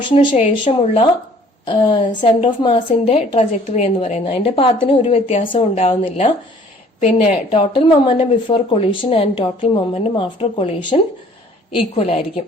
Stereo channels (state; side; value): normal; both; correlation 0.55